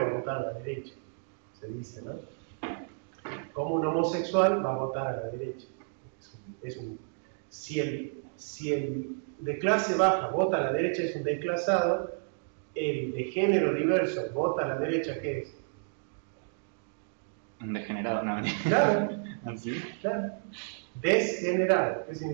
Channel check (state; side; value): silent; left; digital silence